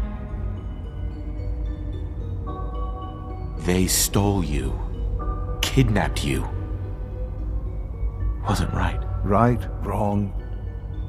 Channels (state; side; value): identical; both; correlation 1.00